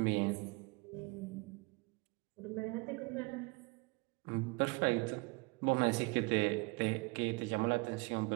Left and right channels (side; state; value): left; quieter; 27.5 dB